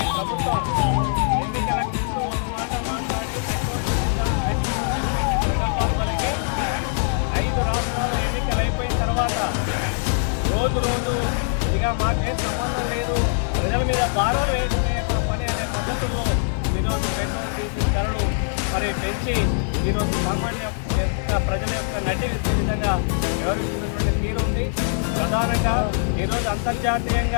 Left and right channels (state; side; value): silent; right; digital silence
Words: ప్రభుత్వం ఎన్నికల ముందు ఒక మాట మాట్లాడి ప్రజలకి 5 రాష్ట్రాలు ఎన్నికలు అయిపోయిన తర్వాత రోజు ఇక మాకేం సంబంధం లేదు, ప్రజల మీద భారాలు వేయడమే పని అనే పద్ధతుల్లో ఈరోజు పెట్రోల్ డీజిల్ ధరలు మరి పెంచి ఈరోజు సామాన్య ప్రజల యొక్క నడ్డి విధంగా వ్యవహరిస్తున్నటువంటి తీరు ఉంది. ప్రధానంగా ఈరోజు